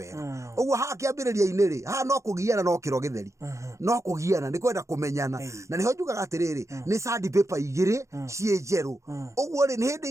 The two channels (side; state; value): left; late; 0.15 ms